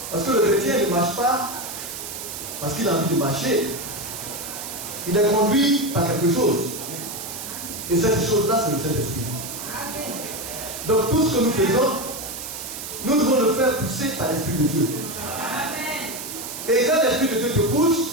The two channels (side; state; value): right; noise; hiss, 8 dB below the sound